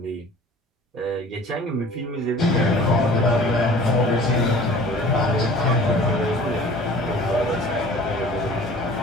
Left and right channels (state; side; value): normal; both; correlation 0.46